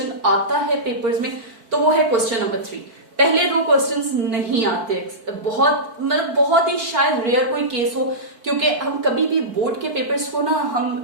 आता है पेपर्स में तो वो है क्वेश्चन नंबर 3. पहले 2 क्वेश्चंस नहीं आते, बहुत ही शायद रेयर कोई केस हो, क्योंकि हम कभी भी बोर्ड के पेपर्स को ना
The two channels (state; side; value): late; left; 4.5 ms